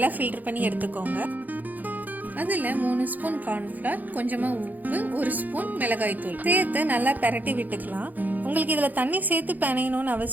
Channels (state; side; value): late; left; 0.083 ms